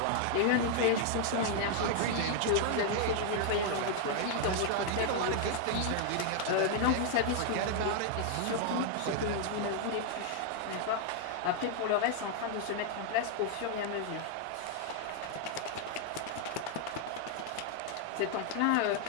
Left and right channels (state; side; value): different; both; correlation 0.00